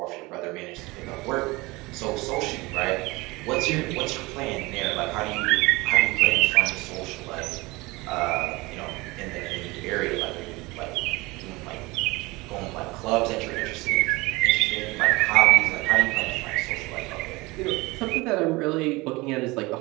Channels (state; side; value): quieter; left; 22.7 dB